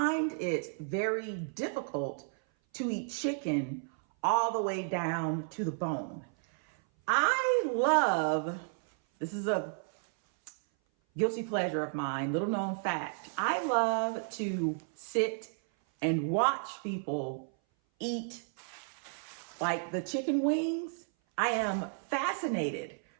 it very difficult to eat chicken all the way down to the bone. I love, this is a guilty pleasure of mine, little known fact. I love to sit and watch people eat like the chicken wings. I am fascinated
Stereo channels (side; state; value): left; silent; 56 dB below the other